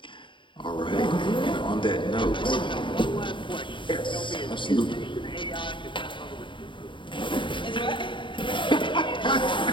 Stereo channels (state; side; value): late; right; 0.24 ms